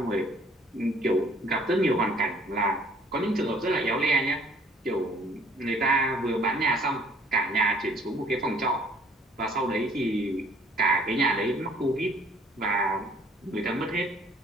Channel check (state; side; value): normal; both; correlation 0.57